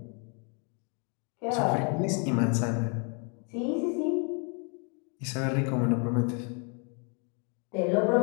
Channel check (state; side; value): quieter; right; 37.6 dB